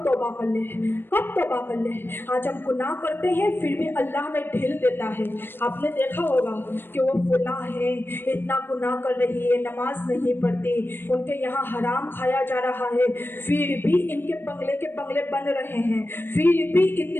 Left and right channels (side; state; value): right; late; 0.10 ms